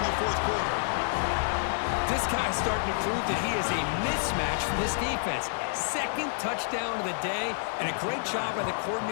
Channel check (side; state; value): right; silent; digital silence